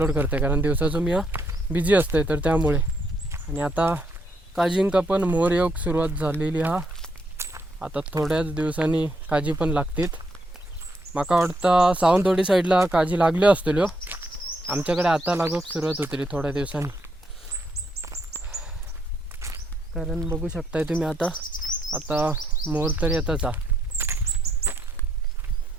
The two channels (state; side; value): normal; both; correlation 0.75